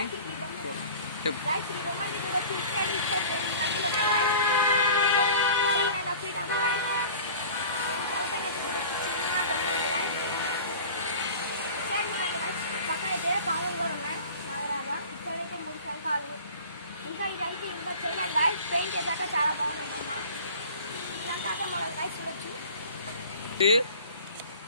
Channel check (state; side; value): inverted; both; correlation -0.41